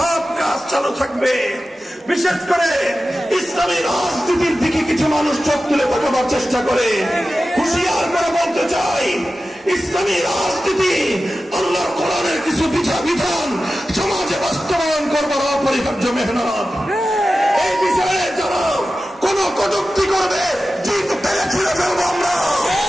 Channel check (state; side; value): normal; both; correlation 0.94